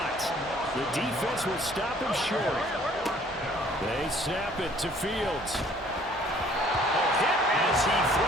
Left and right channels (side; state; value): both; normal; correlation 0.57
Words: The defense will stop him short. They snap it to Fields. A hit as he